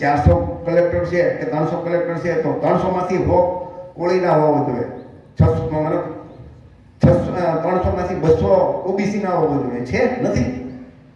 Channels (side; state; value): both; identical; correlation 1.00